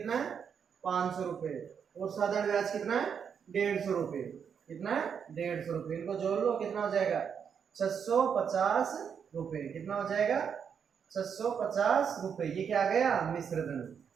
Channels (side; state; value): left; quieter; 7.2 dB